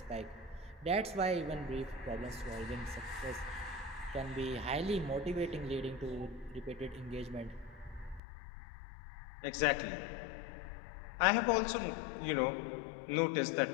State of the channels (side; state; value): right; drops out; at 8.2 s